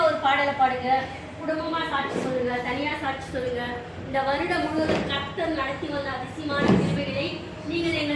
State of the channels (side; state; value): both; identical; correlation 1.00